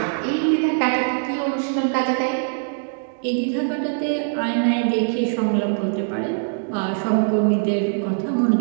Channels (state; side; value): silent; left; digital silence